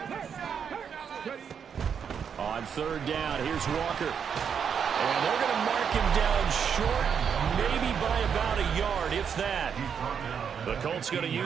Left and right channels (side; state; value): left; quieter; 7.3 dB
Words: On 3rd down, here's Walker. And they're going to mark him down short, maybe by about a yard, if that. The Colts going to